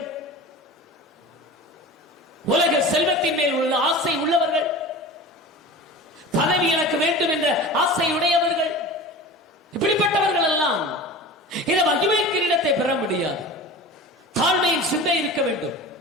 உலக செல்வத்தின் மேல் உள்ள ஆசை உள்ளவர்கள், பதவி எனக்கு வேண்டும் என்ற ஆசை உடையவர்கள், இப்படிப்பட்டவர்கள் எல்லாம் இந்த மகிமை கிரீடத்தை பெற முடியாது. தாழ்மையின் சிந்தை இருக்க வேண்டும்,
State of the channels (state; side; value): normal; both; correlation 0.34